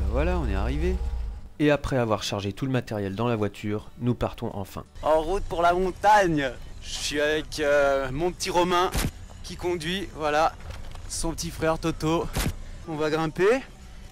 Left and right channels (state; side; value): identical; both; correlation 1.00